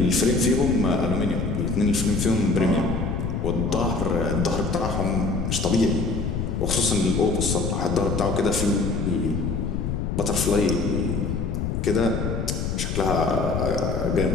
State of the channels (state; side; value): noise; left; rumble, 1 dB below the sound